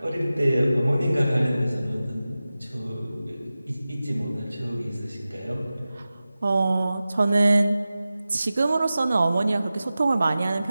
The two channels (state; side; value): inverted; both; correlation -0.95